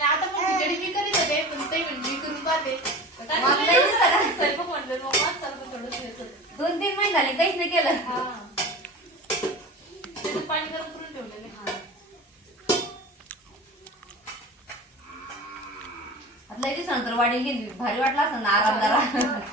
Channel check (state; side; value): normal; both; correlation 0.35